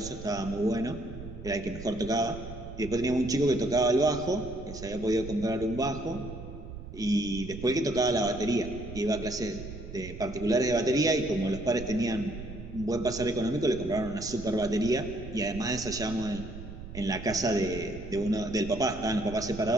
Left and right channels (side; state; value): right; noise; rumble, 12 dB below the sound